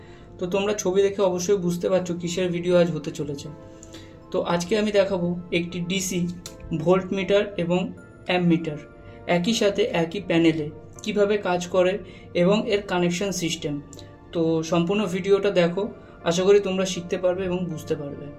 তো তোমরা ছবি দেখে অবশ্যই বুঝতে পারছো কিসের ভিডিও আজ হতে চলেছে। তো আজকে আমি দেখাবো একটি ডিসি ভোল্ট মিটার এবং অ্যাম্প মিটার একই সাথে একই প্যানেলে কিভাবে কাজ করে এবং এর কানেকশন সিস্টেম। তো সম্পূর্ণ ভিডিওটা দেখো, আশা করি তোমরা শিখতে পারবে এবং বুঝতে পারবে।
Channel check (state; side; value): identical; both; correlation 1.00